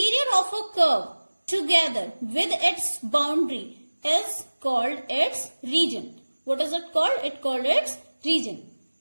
of a curve together with its boundary is called its region. What is it called? It called its region.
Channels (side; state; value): both; inverted; correlation -1.00